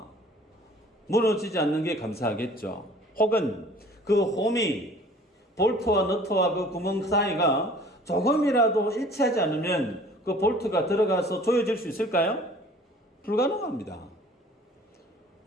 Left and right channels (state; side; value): normal; both; correlation 0.50